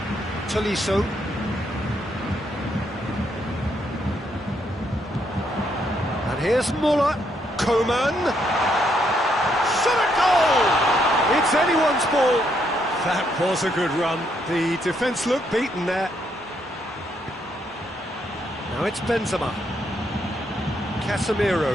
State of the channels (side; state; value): both; normal; correlation 0.75